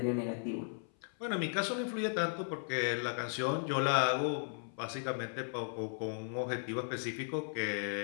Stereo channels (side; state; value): right; silent; 54 dB below the other